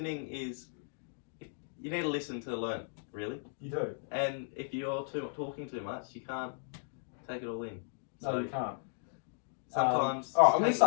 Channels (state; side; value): silent; right; digital silence